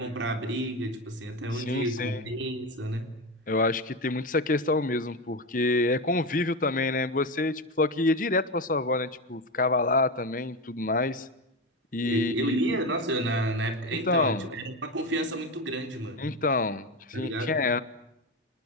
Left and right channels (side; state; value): both; normal; correlation 0.17